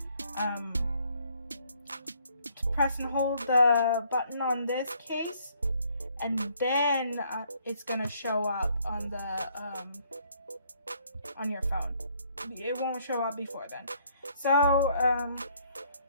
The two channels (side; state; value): both; inverted; correlation -0.66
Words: press and hold the button on this case, and then it's gonna show up on on your phone. It won't show up before then. So